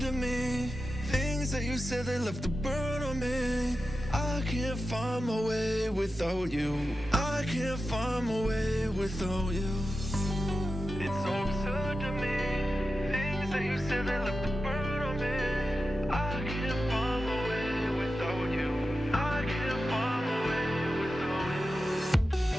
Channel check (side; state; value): both; normal; correlation 0.91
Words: to me. Things that you said they left a burn on me. I can't find my way without you. I can't find my way without you. It's so absurd to me. Things that you said they left a burn on me. I can't find my way without you. I can't find my way without you.